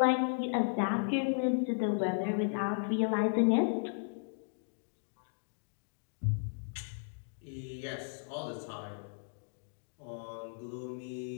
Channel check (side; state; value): right; silent; digital silence